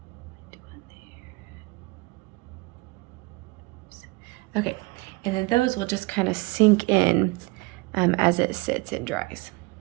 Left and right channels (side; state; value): left; quieter; 25.2 dB